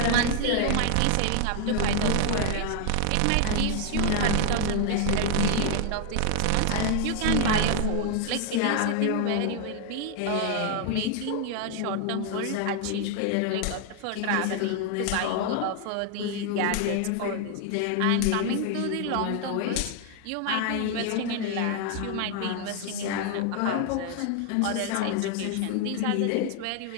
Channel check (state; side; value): different; both; correlation 0.00